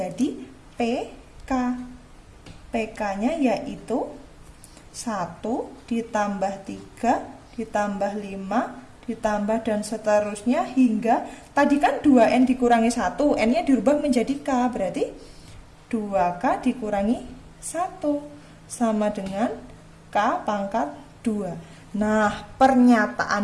PK. PK-nya yaitu 1 ditambah 3 ditambah 5 ditambah dan seterusnya hingga tadi kan 2N dikurangi 1, N-nya dirubah menjadi K, berarti 2K dikurangi 1 sama dengan K pangkat 2. Nah,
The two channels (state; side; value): identical; both; correlation 1.00